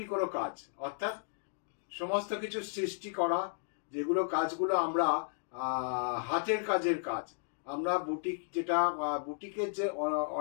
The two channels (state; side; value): silent; right; digital silence